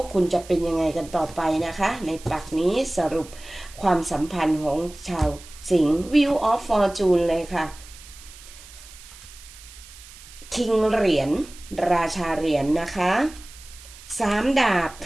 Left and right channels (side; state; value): right; noise; hiss, 19 dB below the sound